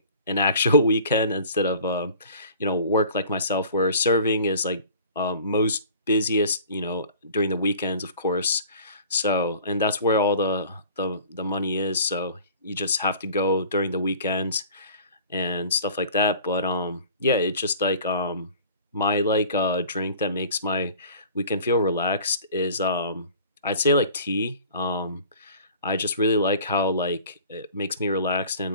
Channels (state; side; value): inverted; both; correlation -0.46